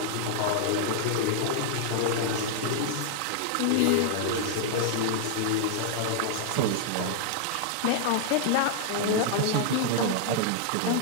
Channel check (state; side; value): different; both; correlation -0.01